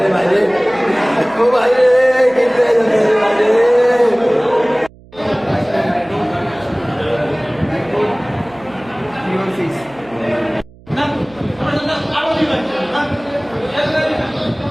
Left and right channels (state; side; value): noise; right; hum, 24 dB below the sound